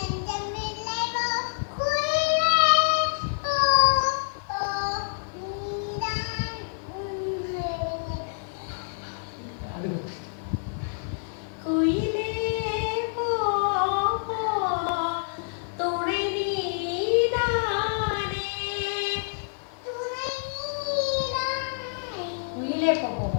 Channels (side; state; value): right; silent; digital silence